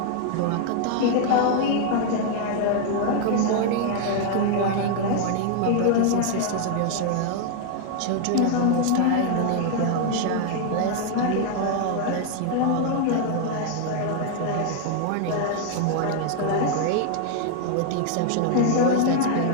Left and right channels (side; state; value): both; different; correlation 0.00